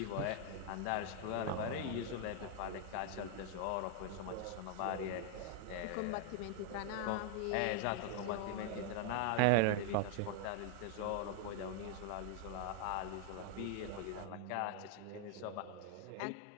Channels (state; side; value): different; both; correlation 0.00